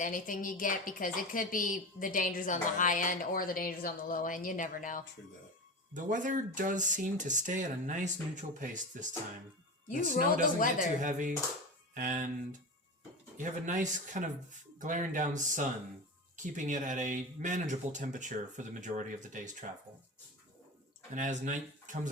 you get because it could be the dangers on the high end or the dangers on the low end. You never know. True that. The weather does seem to stay at a nice neutral pace this time. You the snow roll the doesn't get weather. too heavy, and you have a nice kind of glaring down sun, keeping it at a manageable temperature for the majority of the day's travel. And as night comes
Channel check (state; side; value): normal; both; correlation 0.26